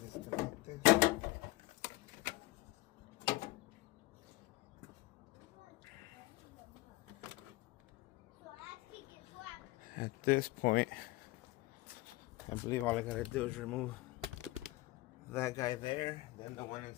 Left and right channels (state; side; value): quieter; right; 19.4 dB